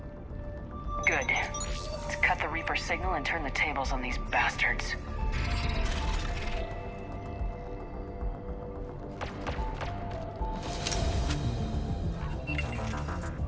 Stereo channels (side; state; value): both; identical; correlation 1.00